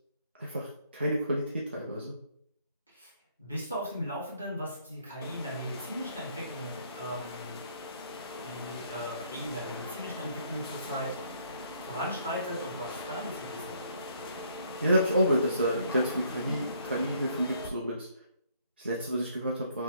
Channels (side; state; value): both; inverted; correlation -0.65